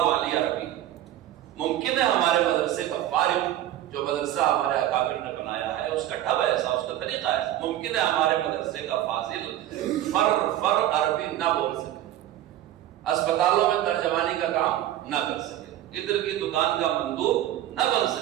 عربی. ممکن ہے ہمارے مدرسے کا فارغ جو مدرسہ ہمارے اکابر نے بنایا ہے اس کا ڈھب ایسا, اس کا طریقہ ایسا, ممکن ہے ہمارے مدرسے کا فاضل فر عربی نہ بول سکے, اسپتالوں میں ترجمانی کا کام نہ کر سکے, ادھر کی دکان کا مندوب نہ بن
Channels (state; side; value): quieter; left; 12.9 dB